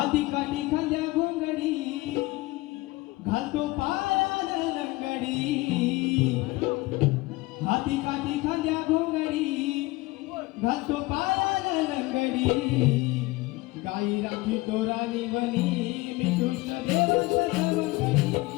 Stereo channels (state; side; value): quieter; right; 21.0 dB